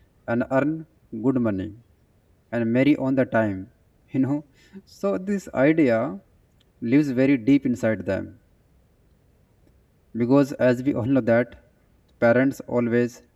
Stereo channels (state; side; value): identical; both; correlation 1.00